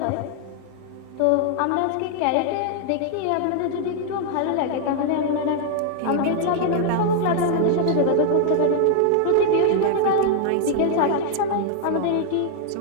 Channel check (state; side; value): different; both; correlation 0.00